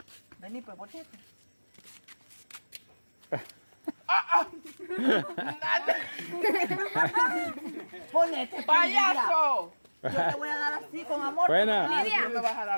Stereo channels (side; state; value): both; inverted; correlation -1.00